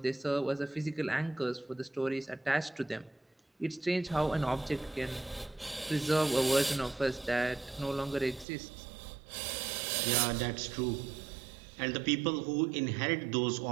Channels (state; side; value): drops out; left; at 8.5 s